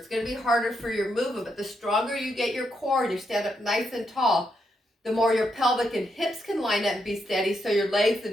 going to be harder for your movement. But the stronger you get your core and you stand up nice and tall, the more your pelvic and hips can line up and be steady. So your legs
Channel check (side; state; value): both; normal; correlation 0.80